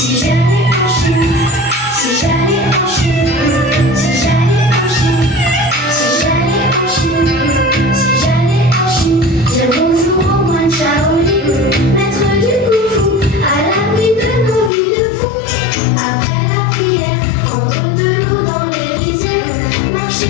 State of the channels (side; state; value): right; drops out; at 14.7 s